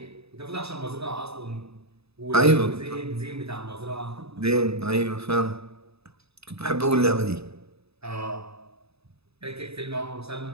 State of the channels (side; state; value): left; late; 0.79 ms